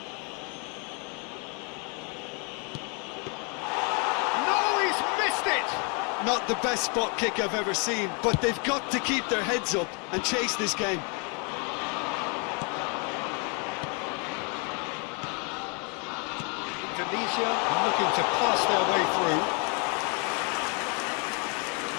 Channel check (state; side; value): quieter; right; 35.2 dB